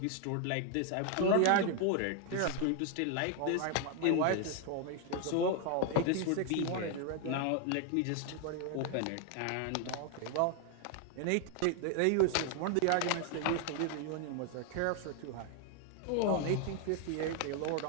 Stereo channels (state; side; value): different; both; correlation 0.00